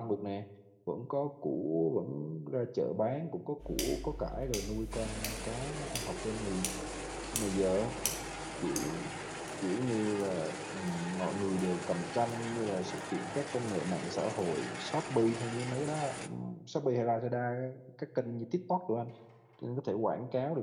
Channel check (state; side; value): identical; both; correlation 1.00